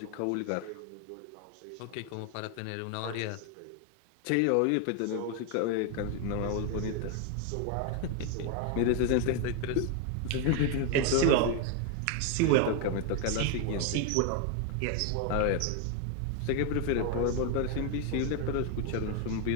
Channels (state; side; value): different; both; correlation 0.01